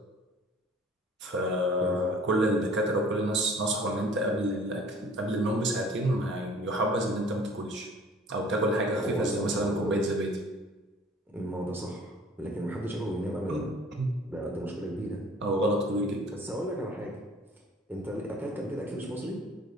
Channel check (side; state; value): both; normal; correlation 0.50